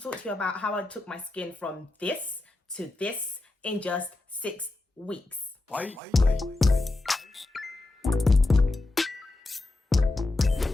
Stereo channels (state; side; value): quieter; right; 3.0 dB